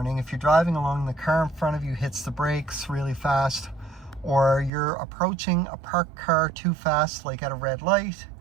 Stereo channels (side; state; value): left; drops out; at 4.7 s